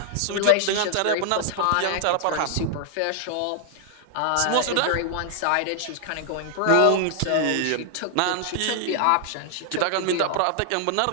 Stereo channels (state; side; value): different; both; correlation 0.00